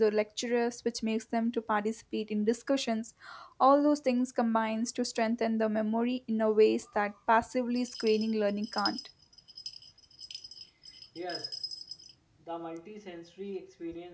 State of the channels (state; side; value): identical; both; correlation 1.00